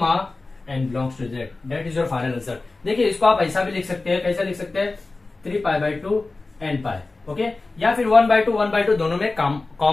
n belongs to z, that is your final answer. देखिए इसको आप ऐसा भी लिख सकते हैं, कैसा लिख सकते हैं, 3π/2 n पाई, ओके, या फिर 1/2 दोनों में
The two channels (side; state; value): right; quieter; 3.4 dB